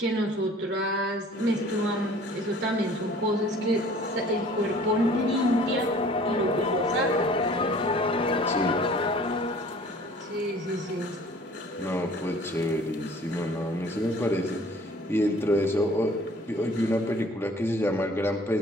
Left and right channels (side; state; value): both; normal; correlation 0.51